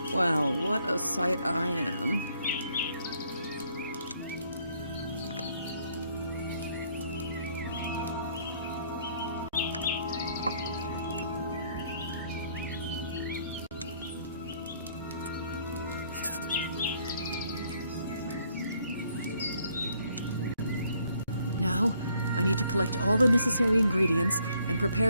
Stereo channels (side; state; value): both; inverted; correlation -0.67